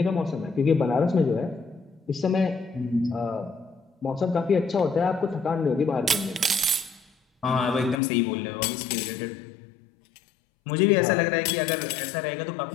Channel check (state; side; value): drops out; right; at 8.0 s